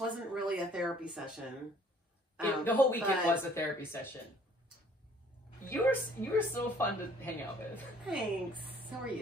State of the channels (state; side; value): normal; both; correlation 0.57